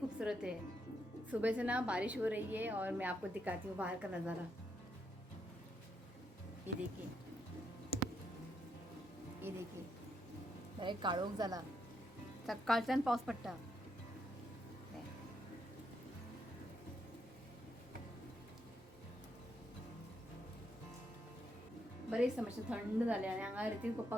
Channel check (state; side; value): normal; both; correlation 0.78